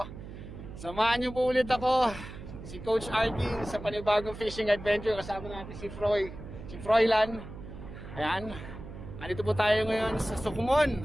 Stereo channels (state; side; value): noise; right; hum, 12 dB below the sound